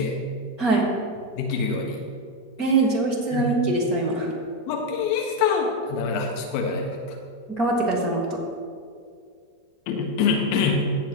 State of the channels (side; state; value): right; late; 4.3 ms